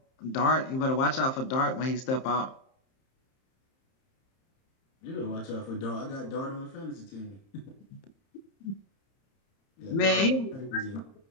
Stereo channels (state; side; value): late; right; 30 ms